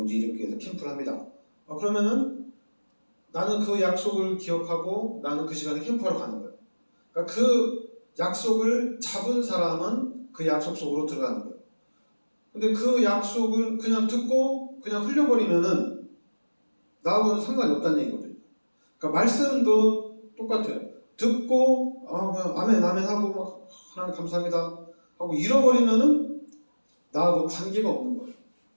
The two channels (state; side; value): inverted; both; correlation -1.00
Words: 일회교회에서 캠프를 합니다. 그러면은 나는 그 약속을 기억하고 나는 그 시간에 캠프하러 가는 거예요. 그러니까 그 약속을 잡은 사람은 그 약속 속으로 들어가는 거예요. 근데 그 약속을 그냥 듣고 그냥 흘려버리면은 나하고는 상관이 없다는 얘기거든요. 그러니까 말씀도 똑같아요. 듣고 그냥 아멘 하고 막 하나님 감사합니다 하고 잃어버리면은 나하고 관계가 없는 거예요.